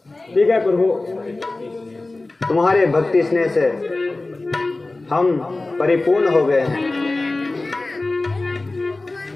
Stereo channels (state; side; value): quieter; right; 3.1 dB